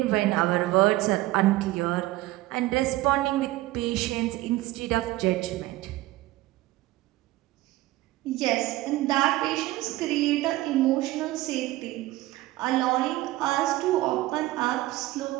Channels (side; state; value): left; quieter; 17.7 dB